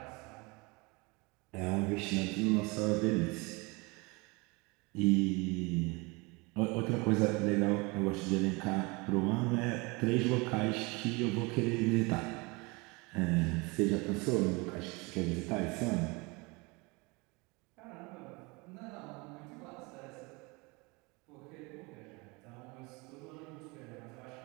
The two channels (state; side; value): quieter; left; 26.9 dB